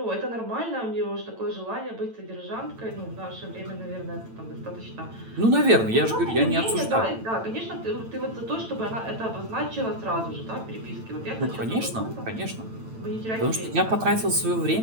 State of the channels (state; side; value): late; left; 9.0 ms